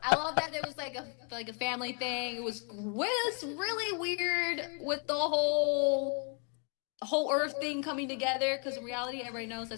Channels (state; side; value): quieter; right; 39.1 dB